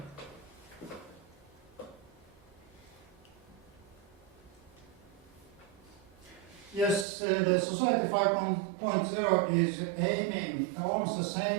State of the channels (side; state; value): left; drops out; at 7.1 s